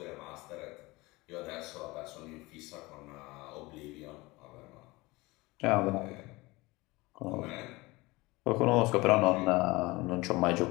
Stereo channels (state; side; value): quieter; right; 22.2 dB